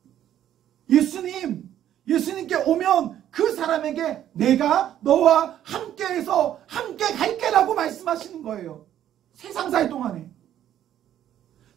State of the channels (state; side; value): quieter; left; 11.2 dB